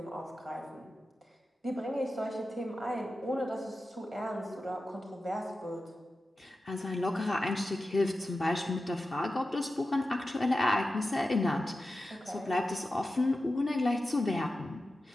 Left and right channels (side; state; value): both; normal; correlation 0.93